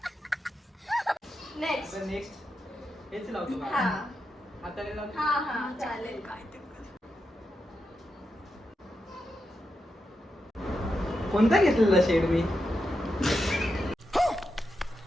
नेक्स्ट. आता नेक्स्ट हेच लावतो का? हा हाताने लावतो. हा चालेल. काय ते कर. कोणता घेतलेला शेड मी?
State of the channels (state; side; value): normal; both; correlation 0.87